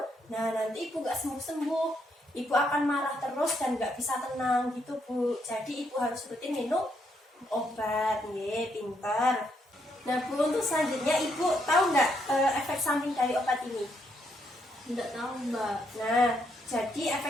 nah nanti Ibu nggak sembuh-sembuh. Ibu akan marah terus dan nggak bisa tenang gitu, Bu. Jadi Ibu harus rutin minum obat, pintar. Nah, Bu, untuk selanjutnya Ibu tahu nggak efek samping dari obat ini? Enggak tahu, Mbak. Nah, jadi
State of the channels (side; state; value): both; normal; correlation 0.75